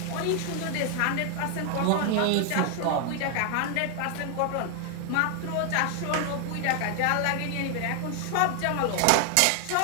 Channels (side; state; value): both; different; correlation 0.00